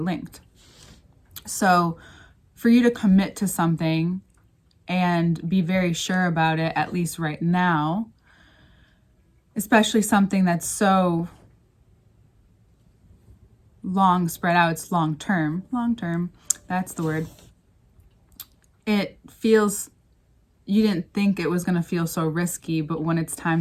So for you to commit to something and be very sure about it, at least right now, especially something that's so long spread out, it's long term, that's the word. It feels, you didn't think it was going to feel so risky, but when it's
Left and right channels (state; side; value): identical; both; correlation 1.00